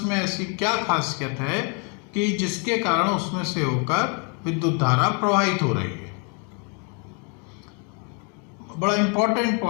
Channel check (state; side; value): quieter; right; 36.8 dB